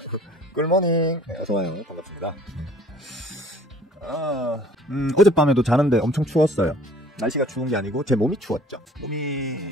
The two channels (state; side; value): normal; both; correlation 0.52